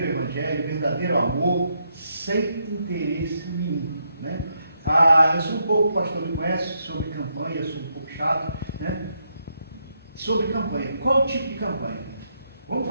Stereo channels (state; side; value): inverted; both; correlation -0.79